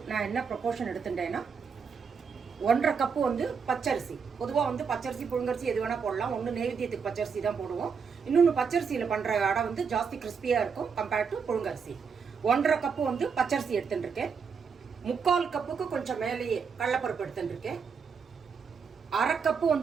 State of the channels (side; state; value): left; quieter; 6.0 dB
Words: நான் என்ன ப்ரொபோர்ஷன் எடுத்துட்டேன்னா 1.5 கப்பு வந்து பச்சரிசி. பொதுவாக வந்து பச்சரிசி புழுங்கரிசி எது வேணால் போடலாம். ஒன்று நெய்வேத்தியத்துக்கு பச்சரிசி தான் போடுவோம். இன்னொன்று பச்சரிசியில் பண்ணுற அடை வந்து ஜாஸ்தி கிறிஸ்பியாக இருக்கும் கம்பேர்ட் டு புழுங்கரிசி. 1.5 கப்பு வந்து பச்சரிசி எடுத்துட்டு இருக்கேன். 3/4 கப்புக்கு கொஞ்சம் மேலேயே கடலைப்பருப்பு எடுத்துட்டு இருக்கேன். 1/2 கப்பு